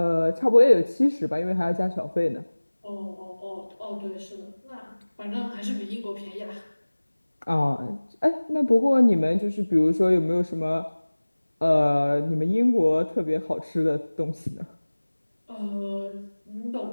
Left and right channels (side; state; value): both; inverted; correlation -1.00